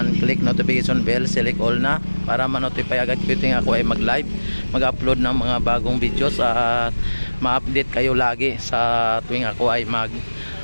click notification bell, select all na para ma-notify agad ko yung ako ay mag-live, mag-upload ng mga bagong videos at ma-update kayo lagi sa tuwing ako ay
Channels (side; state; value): both; inverted; correlation -1.00